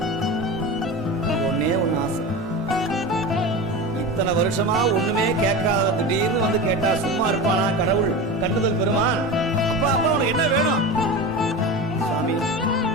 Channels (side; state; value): both; normal; correlation 0.27